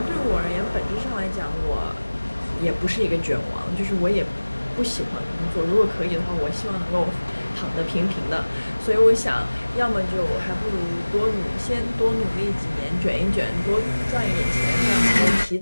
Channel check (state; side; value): inverted; both; correlation -1.00